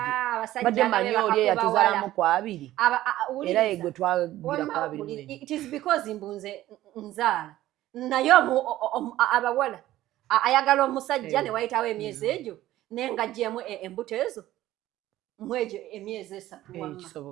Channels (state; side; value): quieter; left; 14.7 dB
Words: Abasajja badde manyi oli eyatuzaalamu ku 2. Era ye gwe twagira ku 2. It is because mbunze nzaala. Naye abawala ayagala omusajja ne wayitawo emyezi egyo n'engaggyemu embuto ezo mwejo emyezi 3 wamma.